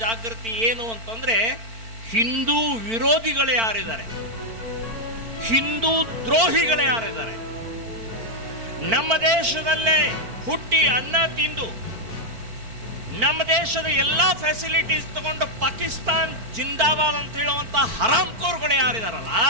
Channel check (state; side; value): late; left; 4.4 ms